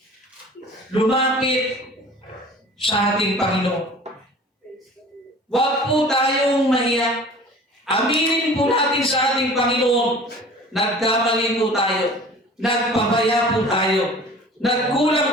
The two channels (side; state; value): both; normal; correlation 0.44